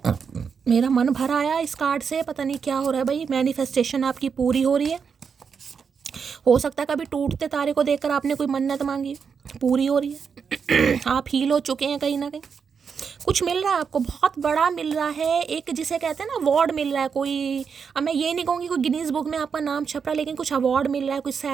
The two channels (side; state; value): left; quieter; 6.3 dB